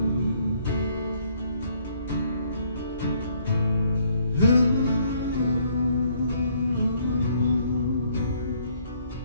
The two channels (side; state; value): both; inverted; correlation -0.66